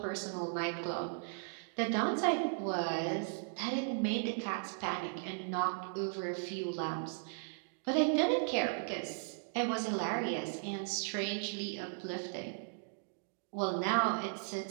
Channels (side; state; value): left; silent; digital silence